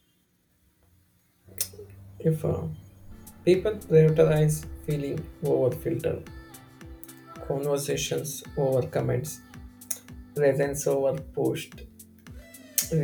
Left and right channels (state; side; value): identical; both; correlation 1.00